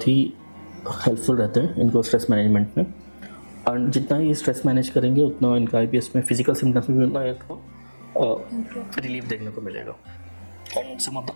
ही हेल्पफुल रहते हैं इनको स्ट्रेस मैनेजमेंट में, और जितना ही स्ट्रेस मैनेज करेंगे उतना इनका IBS में फिजिकल सिम्टम्स में भी उतना इनको रिलीफ देखने को मिलेगा। And some of the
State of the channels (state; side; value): inverted; both; correlation -1.00